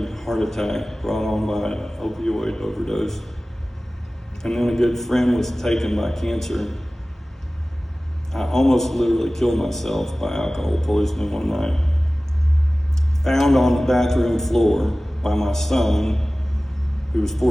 heart attack brought on by an opioid overdose, and then a good friend was taken by cancer, I almost literally killed myself by alcohol poisoning one night. Found on the bathroom floor by my son, who was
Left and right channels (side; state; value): both; normal; correlation 0.97